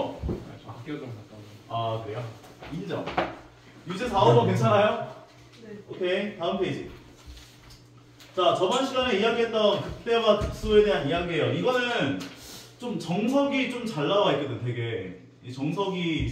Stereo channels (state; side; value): identical; both; correlation 1.00